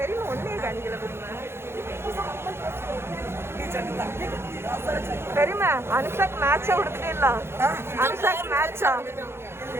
ஒன்னே கணிக்கல தெரியுமா? அனுஷாக்கு மேட்சா கொடுத்துட்டே இல்ல. அனுஷாக்கு மேட்சா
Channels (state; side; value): late; left; 0.12 ms